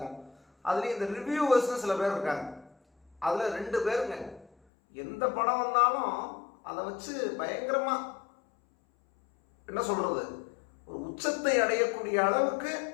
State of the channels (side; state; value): right; drops out; at 4.5 s